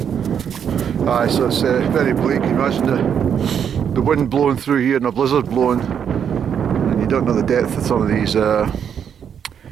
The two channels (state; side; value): quieter; left; 8.0 dB